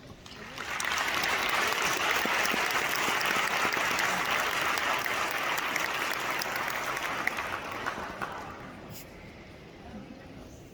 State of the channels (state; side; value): identical; both; correlation 1.00